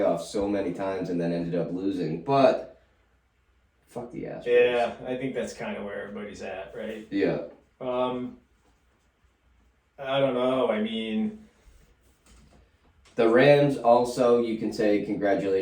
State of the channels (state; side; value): identical; both; correlation 1.00